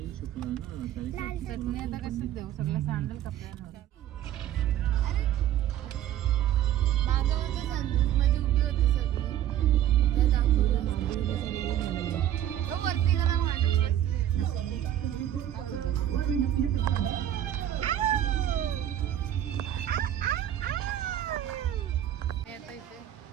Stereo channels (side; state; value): left; quieter; 11.5 dB